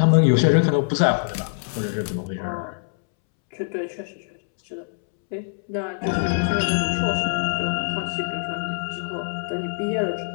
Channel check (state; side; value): silent; right; 63 dB below the other